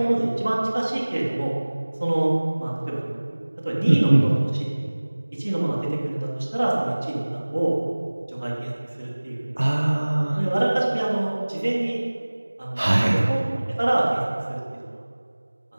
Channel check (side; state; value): both; inverted; correlation -1.00